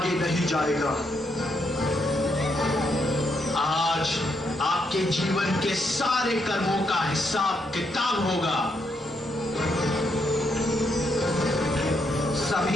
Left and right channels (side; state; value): both; normal; correlation 0.77